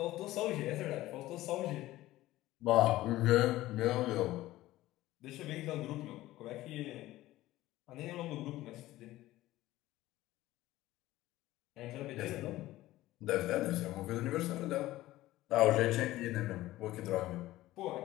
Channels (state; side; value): quieter; right; 16.3 dB